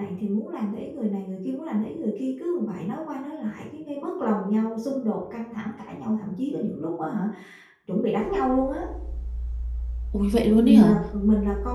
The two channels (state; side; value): identical; both; correlation 1.00